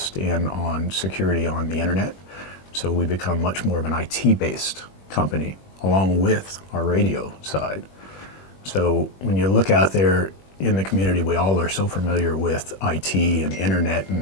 in on security on the internet. So we become much more of an IT-based company along with our radio side. So when you look out there in the community, we all are so familiar with IT and internet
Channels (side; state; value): right; late; 21 ms